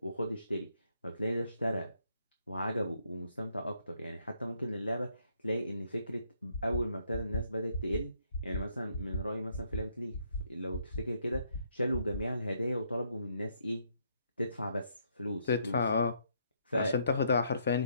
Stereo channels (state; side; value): inverted; both; correlation -0.72